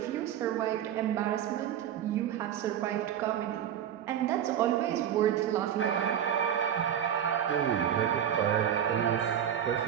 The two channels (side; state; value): left; quieter; 9.8 dB